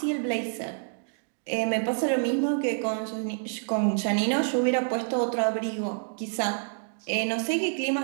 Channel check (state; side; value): silent; left; digital silence